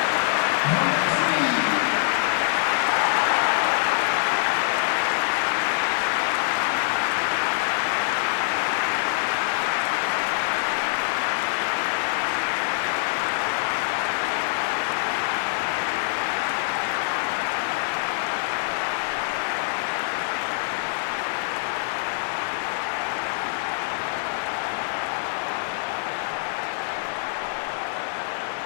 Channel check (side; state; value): right; silent; digital silence